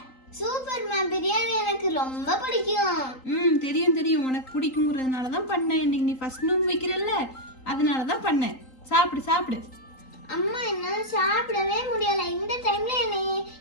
சூப்பர்மா, பிரியாணி எனக்கு ரொம்ப பிடிக்கும். தெரியும் தெரியும், உனக்கு பிடிக்குங்கிறதுனால தான் பண்ணேன். இன்னைக்கு நீ ஃபர்ஸ்ட் நோன்பு வைக்கிறல்ல, அதனால தான் பண்ணேன். சாப்பிடு சாப்பிடு. அம்மா என்னால சாப்பிடவே முடியல. இந்த டைம்ல என்னை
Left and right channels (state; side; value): late; right; 3.8 ms